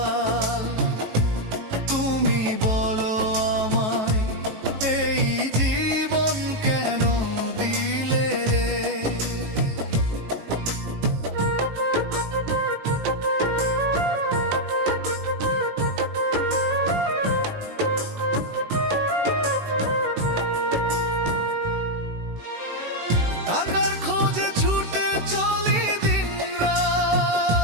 তুমি বলো আমায়, এই জীবন কেন দিলে রে? টাকার খোঁজে ছুটে চলি দিনরাত,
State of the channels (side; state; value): left; late; 19 ms